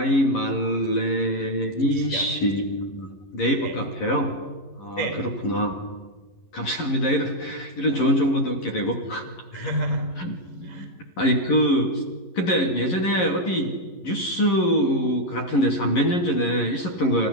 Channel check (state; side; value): late; right; 11 ms